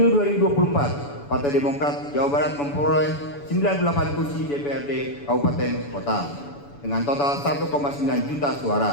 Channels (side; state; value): right; late; 7.0 ms